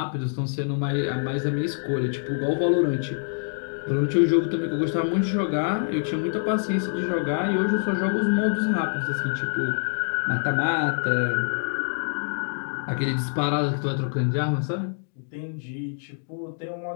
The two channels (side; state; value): right; silent; digital silence